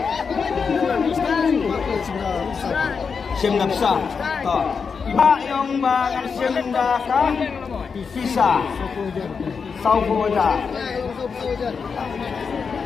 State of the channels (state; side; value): quieter; right; 5.6 dB